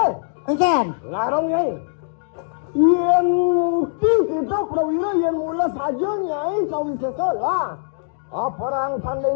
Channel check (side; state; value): right; silent; digital silence